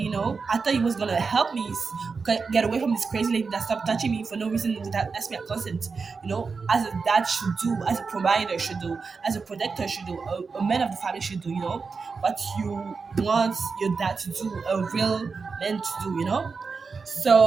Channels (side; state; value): left; quieter; 4.9 dB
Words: I thought he was gonna help me get away from this crazy lady that stopped touching me for no reason without asking my consent. As a dad should do, as a provider should do, as a protector should do, a man of the family should do. What you want your dad to do, a real man to do.